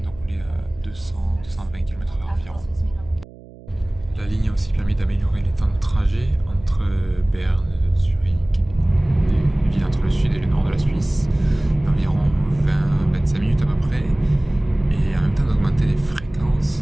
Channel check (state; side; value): noise; right; hum, 20 dB below the sound